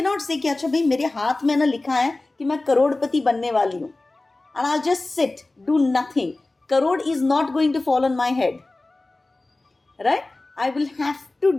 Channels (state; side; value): quieter; right; 3.0 dB